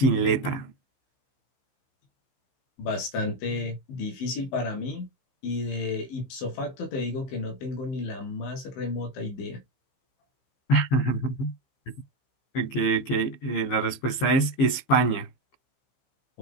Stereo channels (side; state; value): right; late; 15 ms